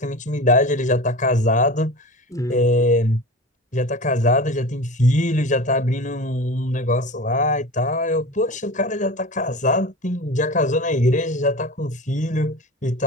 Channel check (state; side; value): normal; both; correlation 0.31